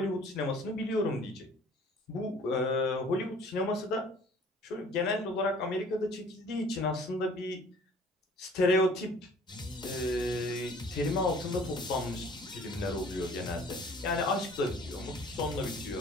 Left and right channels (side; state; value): both; normal; correlation 0.52